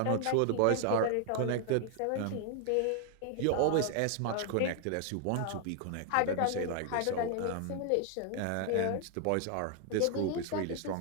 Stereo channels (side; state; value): both; different; correlation 0.00